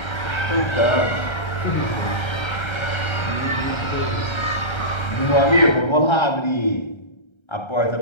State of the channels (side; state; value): right; late; 1.3 ms